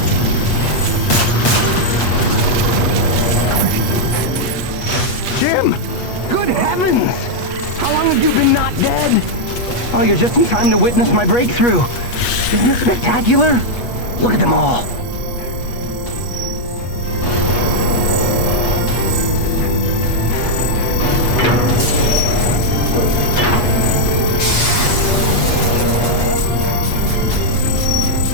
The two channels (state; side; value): late; right; 8.3 ms